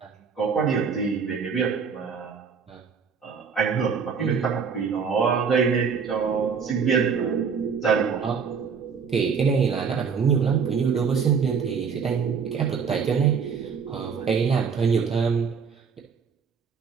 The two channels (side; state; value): left; quieter; 6.1 dB